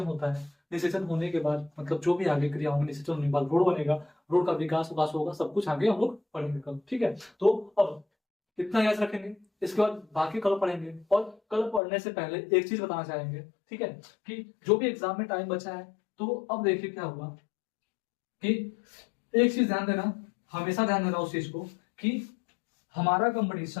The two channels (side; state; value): right; drops out; at 11.8 s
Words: होता है। निषेचन होने के बाद मतलब जो भी आगे क्रिया होंगी, निषेचन होने के बाद रोड बनेगा, रोड का विकास होगा, सब कुछ आगे हम लोग पढ़ेंगे कल। ठीक है, तो अब इतना याद रखेंगे, इसके बाद बाकी कल पढ़ेंगे। और कल पढ़ने से पहले एक चीज बताना चाहेंगे, ठीक है, कि जो भी एग्जाम में टाइम बचा है, तो अब देखिए क्या हुआ कि एक चीज ध्यान देना, हमेशा ध्यान देना उस चीज को कि हमारा